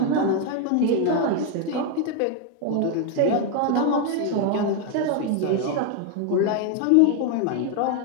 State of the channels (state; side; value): different; both; correlation 0.01